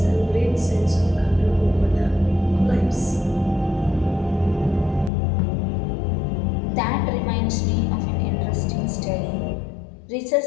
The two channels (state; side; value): drops out; right; at 5.1 s